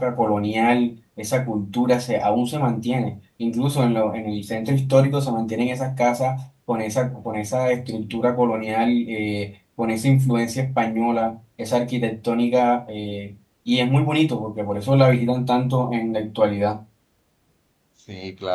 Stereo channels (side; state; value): both; identical; correlation 1.00